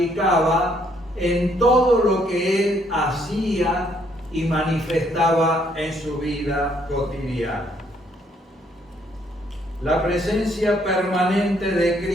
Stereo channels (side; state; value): both; normal; correlation 0.68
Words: en todo lo que él hacía y manifestaba en su vida cotidiana. La presencia permanente de